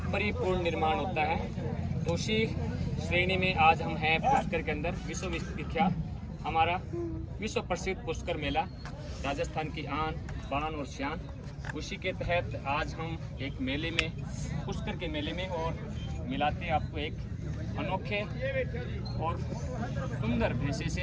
परिपूर्ण निर्माण होता है। तो उसी श्रेणी में आज हम हैं पुष्कर के अंदर। विश्वविख्यात हमारा विश्व प्रसिद्ध पुष्कर मेला, राजस्थान की आन बान और शान। उसी के तहत आज हम एक मेले में, पुष्कर के मेले में, और मिलाते हैं आपको एक अनोखे और सुंदर भैंसे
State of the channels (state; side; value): identical; both; correlation 1.00